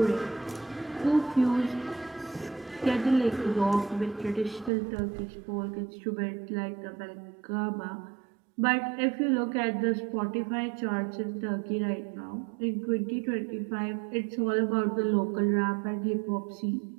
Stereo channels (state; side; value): drops out; left; at 4.7 s